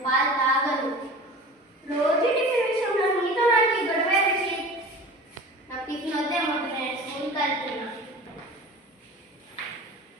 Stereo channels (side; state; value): both; normal; correlation 0.38